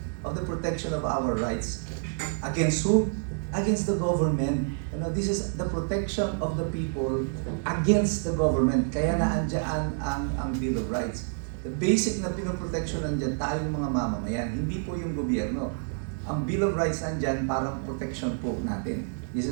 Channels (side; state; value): left; silent; 59 dB below the other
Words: of the protection of our rights. Against who? Against the government. This is the protection of the people against the government. Kaya naandyan ang Bill of Rights. The basic na pinoprotection nandiyan tayong mga mamamayan, hindi po yung gobyerno. Ang Bill of Rights nandiyan para protection po natin. This